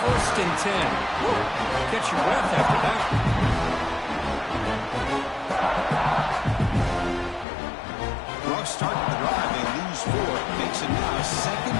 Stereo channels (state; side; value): drops out; right; at 7.5 s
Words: First and 10. Woo. Catch your breath after that. Rough start to the drive. They lose 4. Makes it now second